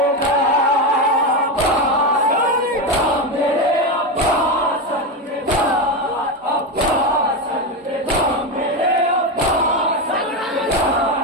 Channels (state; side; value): normal; both; correlation 0.13